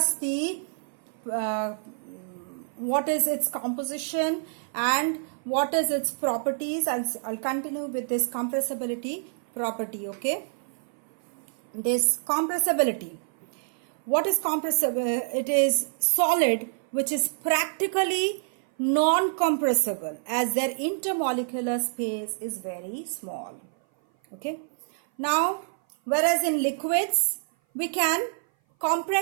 the what is its composition and what is its properties. I'll continue with this compressibility property. Okay, this compressibility. What is compressible? It is solid which is practically non-compressible as their intermolecular space is very small. Okay. Now, whereas in liquids, we can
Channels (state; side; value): silent; left; 56 dB below the other